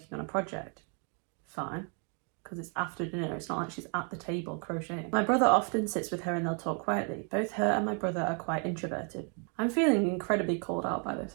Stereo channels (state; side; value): quieter; left; 39.4 dB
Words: on a project. Fine. Because it's after dinner, it's not like she's at the table crocheting. My brother often sits with her and they'll talk quietly. Both her and my brother are quite introverted. I'm feeling incredibly called out by this,